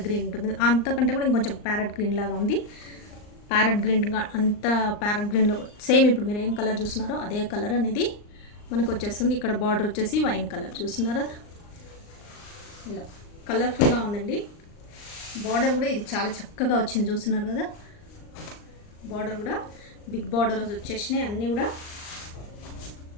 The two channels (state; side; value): late; right; 39 ms